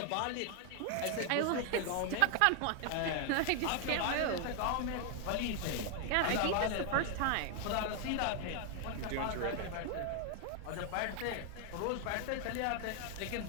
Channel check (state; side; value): different; both; correlation 0.00